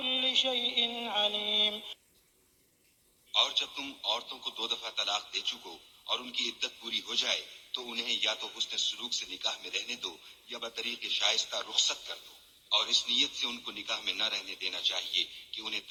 شيء عليم. اور جب تم عورتوں کو 2 دفعہ طلاق دے چکو اور ان کی عدت پوری ہو جائے تو انہیں یا تو حسن سلوک سے نکاح میں رہنے دو یا بطریق شائستہ رخصت کر دو، اور اس نیت سے ان کو نکاح میں نہ رہنے دینا چاہیے کہ انہیں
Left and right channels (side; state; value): both; identical; correlation 1.00